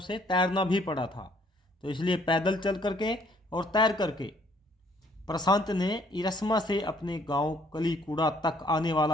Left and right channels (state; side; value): normal; both; correlation 0.63